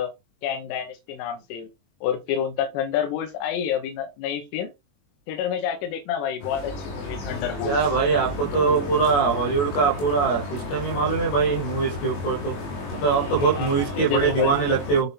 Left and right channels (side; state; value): right; late; 21 ms